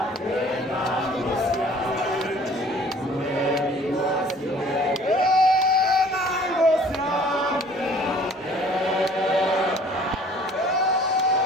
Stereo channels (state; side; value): normal; both; correlation 0.53